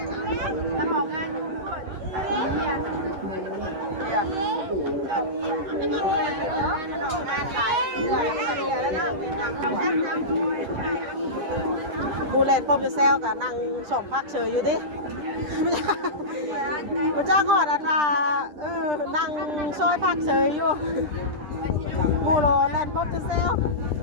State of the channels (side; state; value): left; late; 10 ms